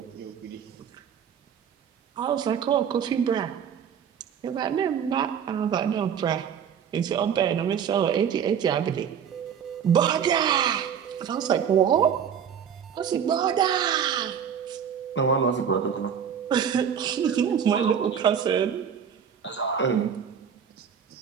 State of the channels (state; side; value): quieter; left; 8.0 dB